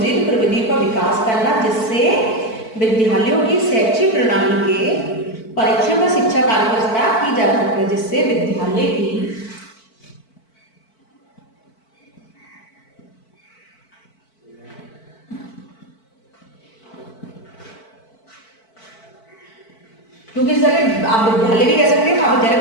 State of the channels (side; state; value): right; late; 4.5 ms